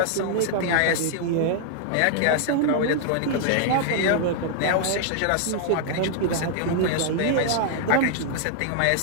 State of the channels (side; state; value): both; different; correlation 0.00